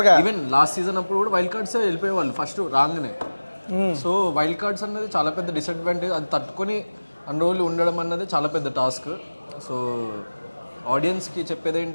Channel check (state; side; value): inverted; both; correlation -1.00